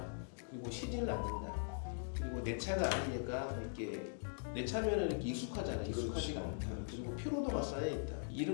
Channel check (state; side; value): silent; right; digital silence